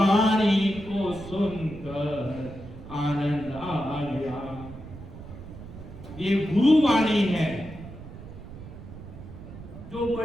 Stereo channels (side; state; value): right; noise; rumble, 14 dB below the sound